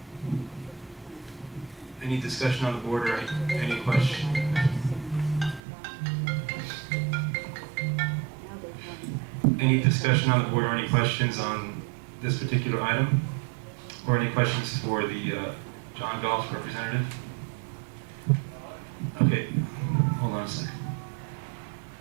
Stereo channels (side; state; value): left; drops out; at 5.6 s